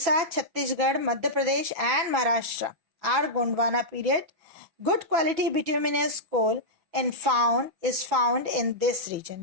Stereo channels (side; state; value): left; late; 6.0 ms